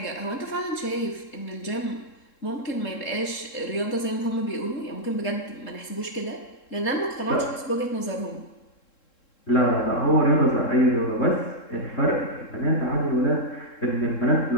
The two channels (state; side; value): late; right; 3.7 ms